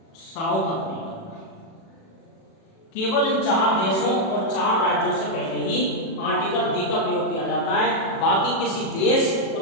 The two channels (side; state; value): right; late; 37 ms